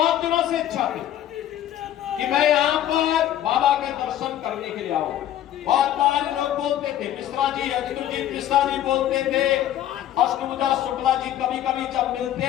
दिनों से इच्छा थी कि मैं यहाँ पर बाबा के दर्शन करने के लिए आऊं। बहुत बार लोग बोलते थे, मिश्रा जी, अजितुलजीत मिश्रा जी बोलते थे, अष्टभुजा शुक्ला जी कभी कभी जब मिलते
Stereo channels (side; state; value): right; quieter; 11.9 dB